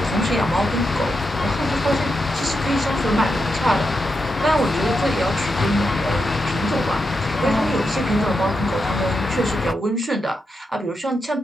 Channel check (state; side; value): normal; both; correlation 0.86